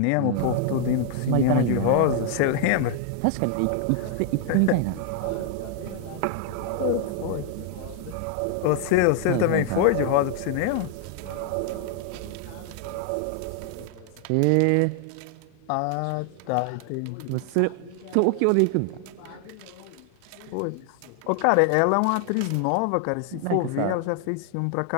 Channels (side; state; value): both; different; correlation 0.00